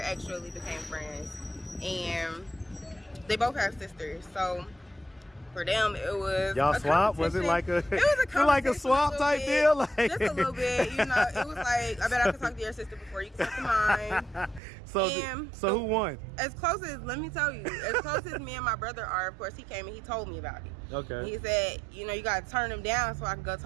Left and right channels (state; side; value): drops out; left; at 14.6 s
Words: actually became friends. And they both have sisters, so for them it was y'all swap. Was it like a? It was a like a swap type deal, like just a little bit. You know, it was like, I bet I could talk to your sister before you can talk to mine. So who won? As close as, let me tell you, as close as me and my brother are, of course, he came and he told me about it. Okay. He said, you know, you gotta turn him down so I can go